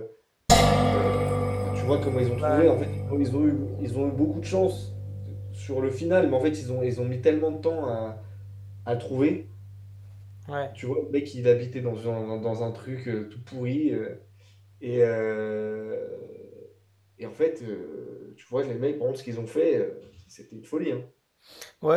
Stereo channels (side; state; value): both; identical; correlation 1.00